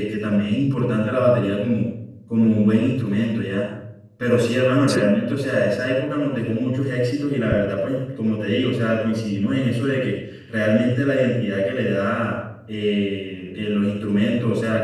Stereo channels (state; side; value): identical; both; correlation 1.00